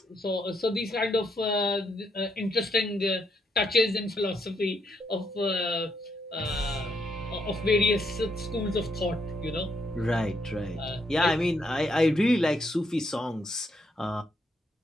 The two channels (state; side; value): normal; both; correlation 0.76